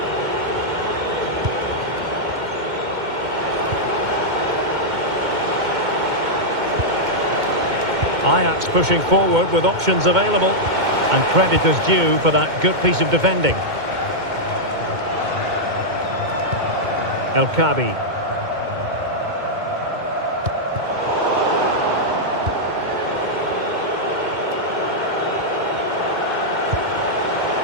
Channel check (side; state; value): left; late; 2.2 ms